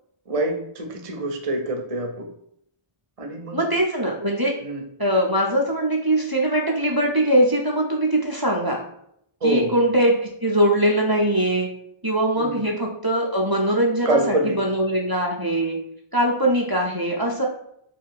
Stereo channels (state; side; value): late; left; 1.0 ms